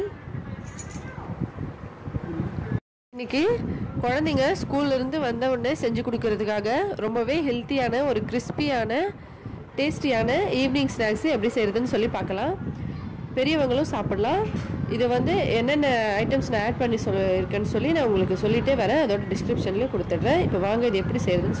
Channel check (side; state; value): both; identical; correlation 1.00